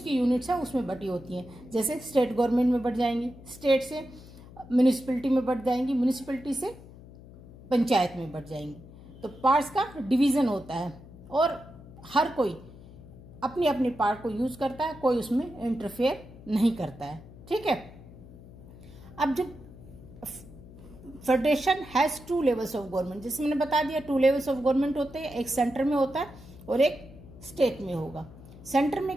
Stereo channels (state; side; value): noise; left; hum, 18 dB below the sound